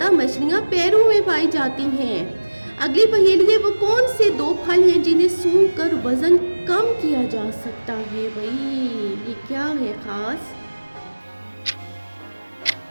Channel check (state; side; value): inverted; both; correlation -1.00